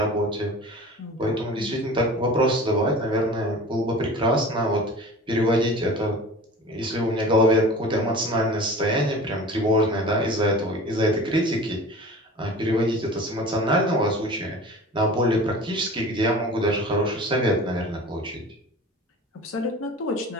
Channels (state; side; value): normal; both; correlation 0.39